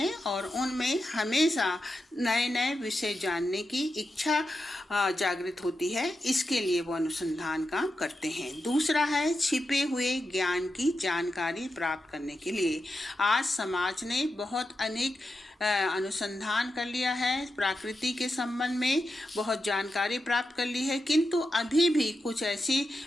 और उनमें हमेशा नए नए विषय जानने की इच्छा जागृत होती है, इसके लिए वो अनुसंधान काम करते हैं। दूसरा है छिपे हुए ज्ञान की जानकारी प्राप्त करने के लिए। आज समाज ने बहुत अनेक अनुसंधान कर लिया है, प्रकृति के संबंध में बहुत जानकारी प्राप्त कर ली है, किंतु अभी भी कुछ ऐसे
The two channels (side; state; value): both; normal; correlation 0.88